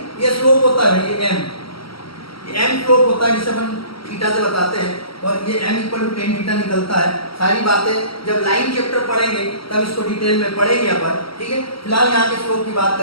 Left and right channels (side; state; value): right; late; 0.75 ms